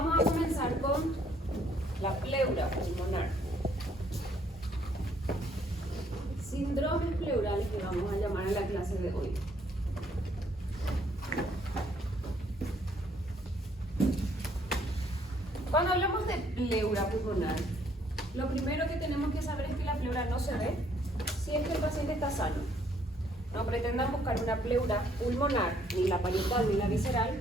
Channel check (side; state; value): both; normal; correlation 0.66